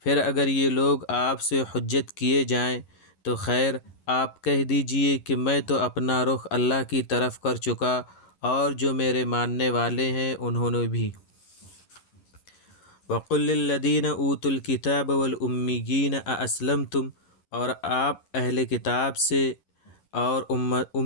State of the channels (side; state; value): right; late; 11 ms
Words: پھر اگر یہ لوگ آپ سے حجت کیے جائیں تو خیر، آپ کہہ دیجئے کہ میں تو اپنا رخ اللہ کی طرف کر چکا اور جو میرے ماننے والے ہیں انہوں نے بھی۔ وقل للذین اوتوا الکتاب والامیین ااسلمتم۔ اور آپ اہل کتاب سے اور